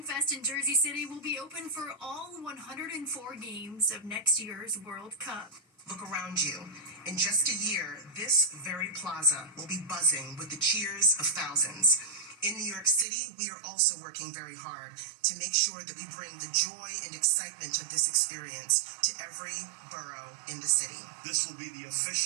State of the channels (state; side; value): drops out; left; at 13.1 s